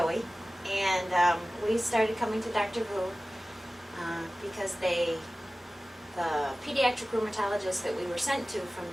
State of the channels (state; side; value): normal; both; correlation 0.97